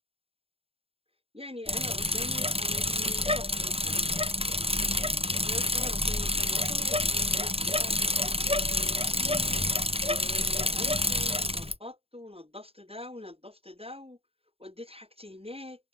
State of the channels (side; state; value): left; late; 0.28 ms